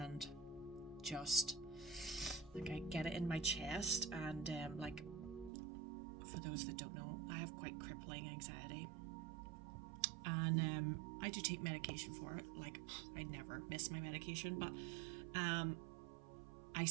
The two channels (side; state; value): left; drops out; at 5.5 s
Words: just like I get it in my chest and for those that don't know, I have quite crippling anxiety. And I do take medication for it. Like I never miss my medication, but I